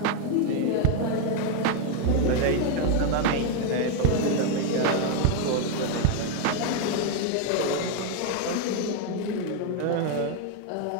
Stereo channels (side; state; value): both; different; correlation 0.01